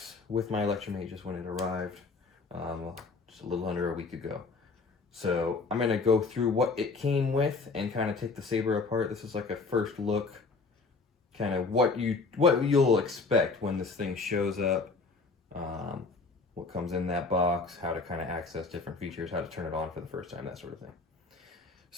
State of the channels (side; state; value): right; quieter; 4.1 dB